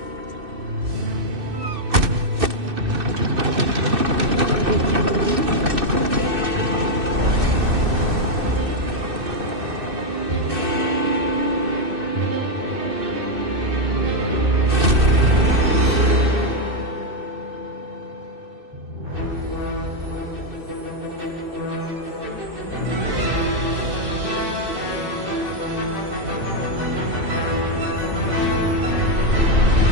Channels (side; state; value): left; late; 2.6 ms